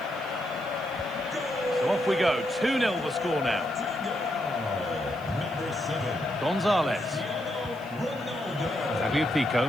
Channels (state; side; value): noise; right; hiss, 25 dB below the sound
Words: So off we go. 2-0 the score now. Gonzalez.